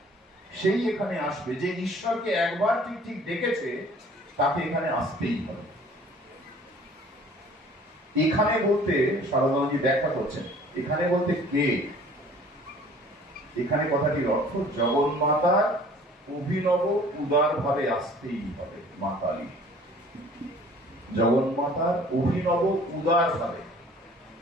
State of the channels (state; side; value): normal; both; correlation 0.52